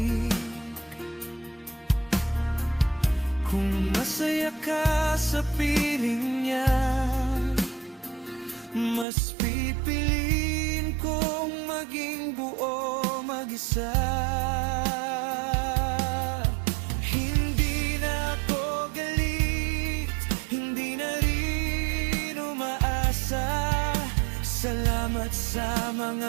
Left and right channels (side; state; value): left; drops out; at 9.1 s